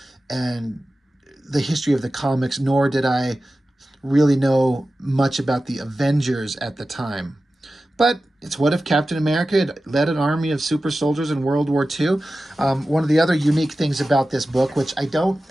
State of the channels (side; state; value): both; normal; correlation 0.94